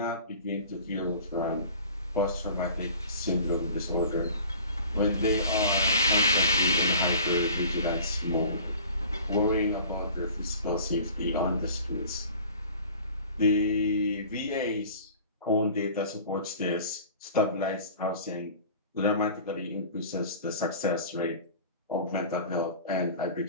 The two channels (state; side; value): inverted; both; correlation -0.44